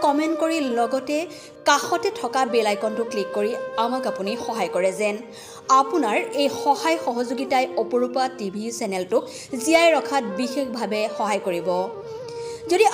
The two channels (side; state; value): both; identical; correlation 1.00